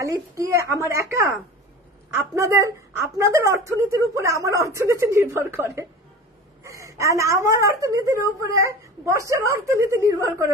কি আমার একা, আপনাদের অর্থনীতির উপরে আমার অর্থনীতি নির্ভর করে, আমার অর্থনীতির উপরে বর্ষার অর্থনীতি নির্ভর করে,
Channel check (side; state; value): both; normal; correlation 0.35